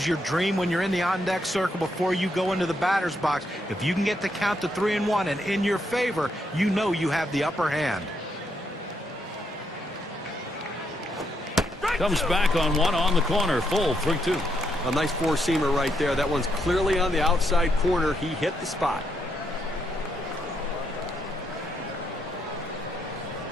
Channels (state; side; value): normal; both; correlation 0.77